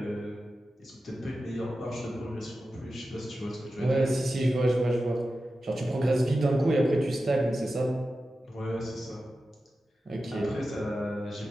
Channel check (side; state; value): both; normal; correlation 0.92